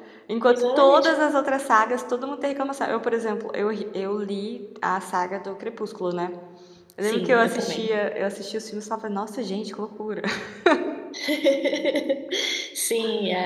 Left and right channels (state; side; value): identical; both; correlation 1.00